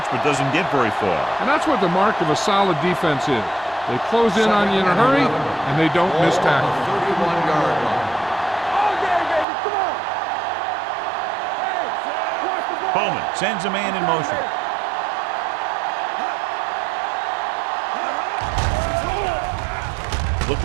but doesn't get very far. And that's what the mark of a solid defense is. They close in on you in a hurry, and they don't miss tackle. 31-yard line. All day, baby, come on. Hey, watch the ball. Bowman sends a man in motion.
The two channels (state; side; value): drops out; left; at 9.5 s